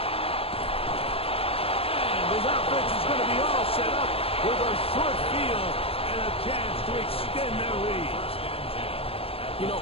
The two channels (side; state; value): right; late; 0.28 ms